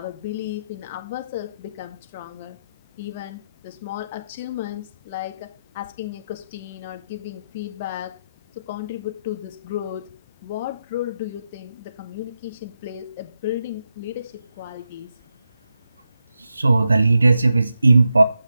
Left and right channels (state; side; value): inverted; both; correlation -0.86